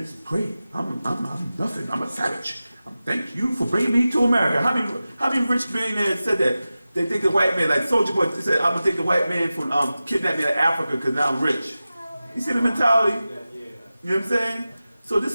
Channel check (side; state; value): both; inverted; correlation -0.95